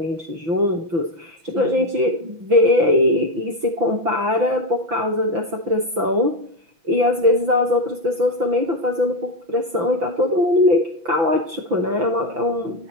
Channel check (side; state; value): left; late; 6.0 ms